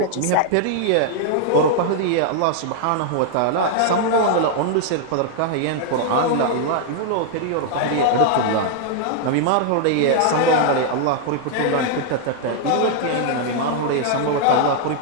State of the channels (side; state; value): both; different; correlation -0.01